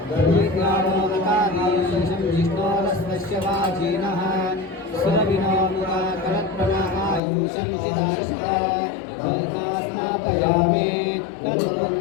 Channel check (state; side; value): drops out; right; at 7.2 s